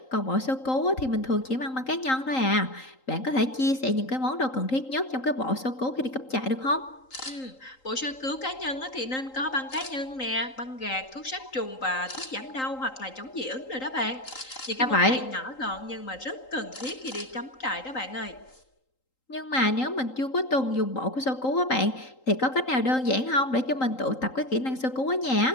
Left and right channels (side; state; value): right; late; 3.8 ms